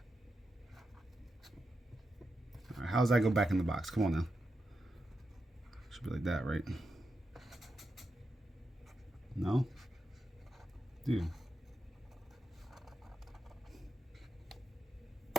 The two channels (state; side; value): normal; both; correlation 0.87